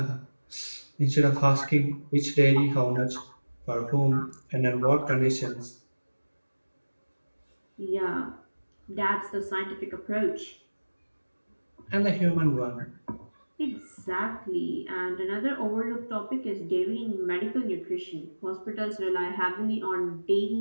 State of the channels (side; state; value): both; inverted; correlation -1.00